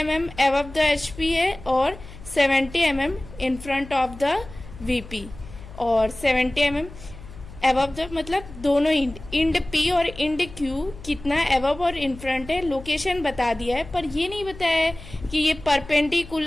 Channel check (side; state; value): left; noise; hum, 16 dB below the sound